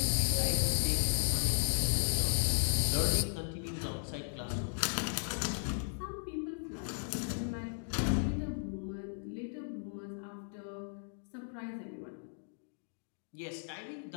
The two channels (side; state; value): right; silent; digital silence